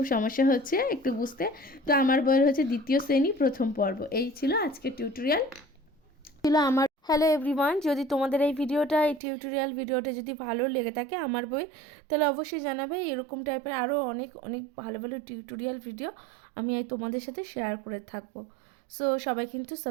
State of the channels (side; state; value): left; drops out; at 9.2 s